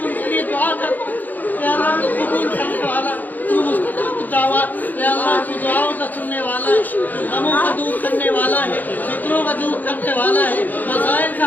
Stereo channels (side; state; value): right; late; 0.084 ms